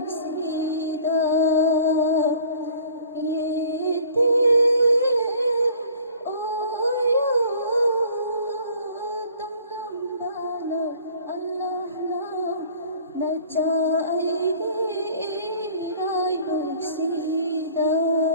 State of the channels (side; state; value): both; inverted; correlation -0.51